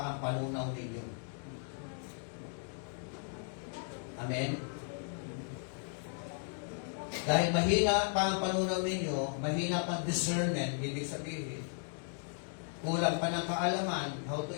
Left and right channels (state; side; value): silent; right; 54 dB below the other